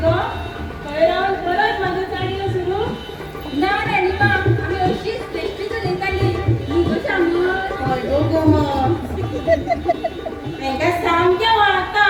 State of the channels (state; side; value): identical; both; correlation 1.00